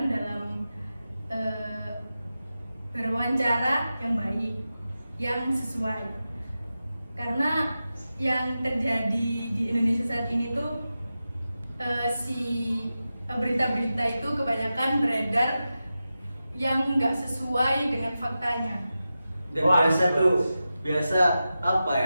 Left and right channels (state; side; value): inverted; both; correlation -0.92